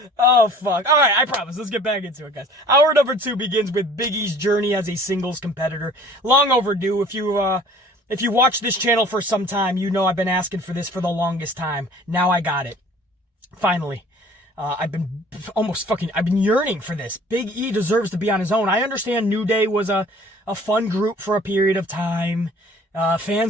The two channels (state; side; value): normal; both; correlation 0.50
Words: Oh, fuck. All right, I promise. Let's get back into it, guys. Hour number 2 begins with Big E's journey as a singles competitor. Long overdue. If you watch this channel for some time, you know I've been asking for this for the longest time. Now I got it. Finally. I've been yearning for this. Big E deserves to be on his own. I understand New Day was a fun group for a period of time.